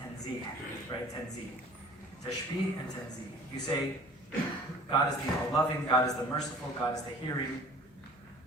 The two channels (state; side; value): noise; left; hum, 26 dB below the sound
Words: right? Tanzih, tashbih and tanzih. You say God is the all-loving, God is the merciful, God is the hearing,